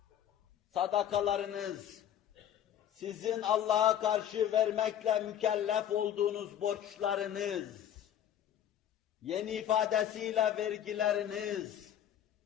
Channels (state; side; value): quieter; right; 10.2 dB